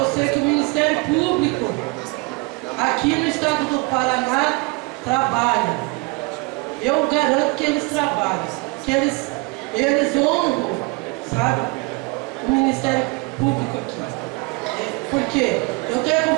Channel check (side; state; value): left; quieter; 27.6 dB